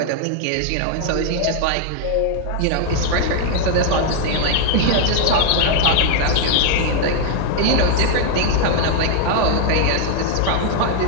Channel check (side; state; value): both; different; correlation 0.00